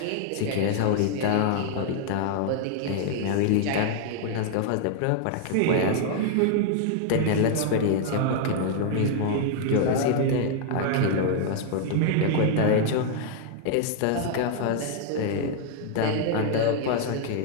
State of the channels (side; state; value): both; different; correlation -0.01